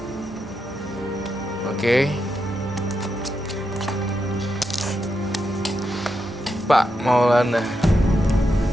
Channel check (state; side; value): normal; both; correlation 0.84